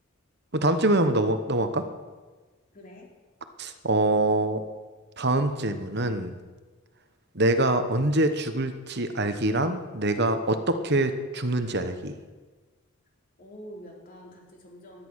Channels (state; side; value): normal; both; correlation 0.11